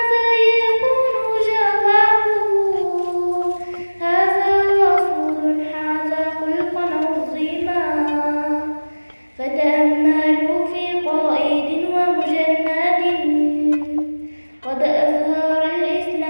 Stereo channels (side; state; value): both; inverted; correlation -1.00